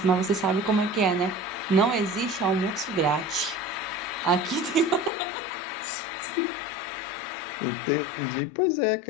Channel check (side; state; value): right; drops out; at 5.1 s